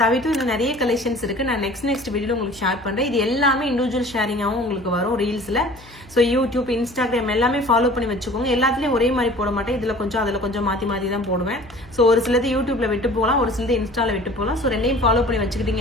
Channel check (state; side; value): noise; left; hum, 23 dB below the sound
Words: தவிர்த்து இன்னும் நிறைய கலெக்ஷன்ஸ் இருக்கு. நான் நெக்ஸ்ட் வீடியோல உங்களுக்கு ஷேர் பண்றேன். இது எல்லாமே இண்டிவிஜுவல் ஷேரிங்காகவும் உங்களுக்கு வரும் ரீல்ஸ்ல. ஸோ யூடியூப், இன்ஸ்டாகிராம் எல்லாமே ஃபாலோ பண்ணி வச்சுக்கோங்க. எல்லாத்துலயும் ஒரே மாதிரி போட மாட்டேன். இதுல கொஞ்சம் அதுல கொஞ்சம் மாத்தி தான் போடுவேன். ஸோ ஒரு சிலது யூடியூப்ல விட்டு போகலாம், ஒரு சிலது இன்ஸ்டால விட்டு போகலாம். ஸோ ரெண்டையும் ஃபாலோ பண்ணி